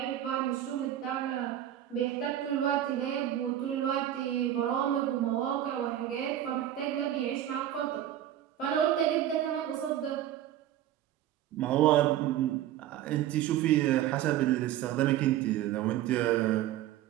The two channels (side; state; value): left; quieter; 12.1 dB